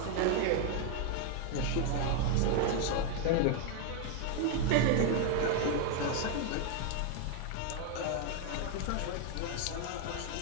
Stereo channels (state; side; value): different; both; correlation 0.00